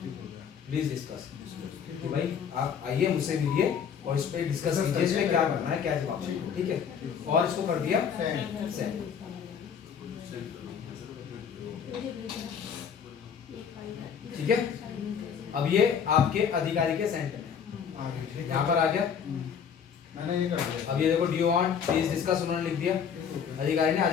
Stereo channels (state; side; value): quieter; right; 7.4 dB